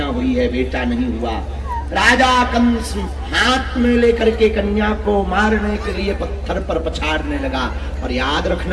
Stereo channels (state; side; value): identical; both; correlation 1.00